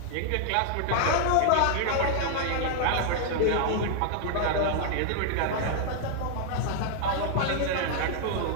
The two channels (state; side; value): different; both; correlation 0.00